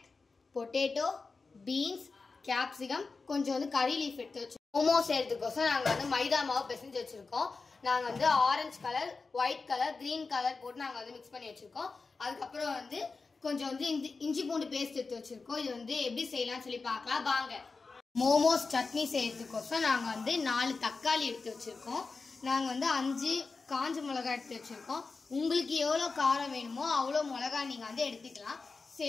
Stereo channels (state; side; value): quieter; right; 4.2 dB